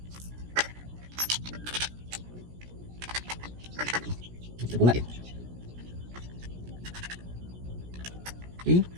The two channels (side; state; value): left; late; 17 ms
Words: kita bodat dia. Okay.